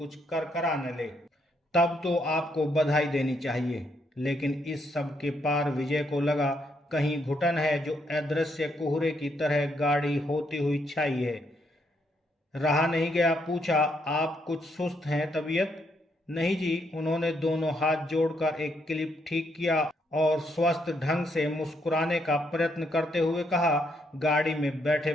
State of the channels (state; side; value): normal; both; correlation 0.75